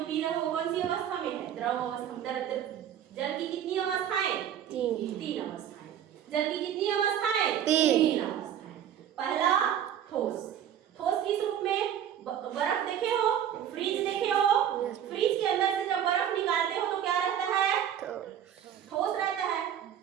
रहे हो कौन सी अवस्था में है? द्रव अवस्था। जल की कितनी अवस्थाएं? तीन अवस्थाएं। जल की कितनी अवस्थाएं? तीन अवस्थाएं। पहला ठोस। ठोस किस रूप में? बर्फ देखे हो, फ्रीज देखे हो, फ्रीज के अंदर से जब बर्फ निकालते हो तो क्या रहता है? ठोस रहता है।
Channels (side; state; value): left; quieter; 9.8 dB